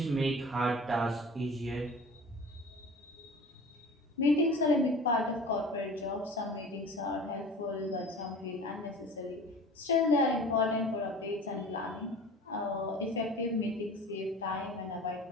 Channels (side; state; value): both; normal; correlation 0.40